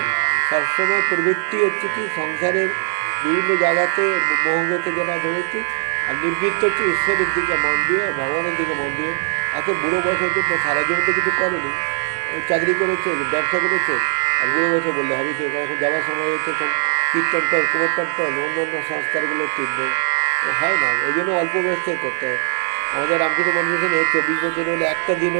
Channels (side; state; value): left; silent; digital silence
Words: সবসময় প্রবৃত্তি হচ্ছে কি সংসারের বিভিন্ন জায়গাতে মোহগতে যারা ধরেছি, আর নিবৃত্ত হচ্ছে ঈশ্বরের দিকে মন দিয়ে, ভগবানের দিকে মন দিয়ে। এত বুড়ো বয়স হচ্ছে তো সারা জীবন তো কিছু করেনি, চাকরি করেছে, ব্যবসা করেছে, আর বুড়ো বয়সে বললে হবে কি, এখন যাওয়ার সময় হচ্ছে এখন কীর্তন টল, কুমোরটান টল, অন্য অন্য সংস্কারগুলো টিপবে, হয় না। ওই জন্য অল্প বয়স থেকে করতে হয়। আমাদের রামকৃষ্ণ মনমিশনে 24 বছর হলে একটা দিন